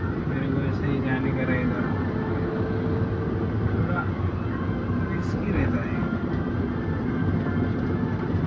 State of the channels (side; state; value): both; identical; correlation 1.00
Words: मेरे को ऐसे ही जाने का रहेगा। थोड़ा रिस्की रहता है,